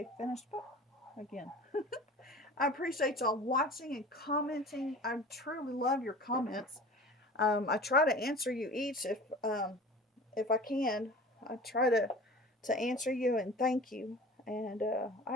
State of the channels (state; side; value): normal; both; correlation 0.39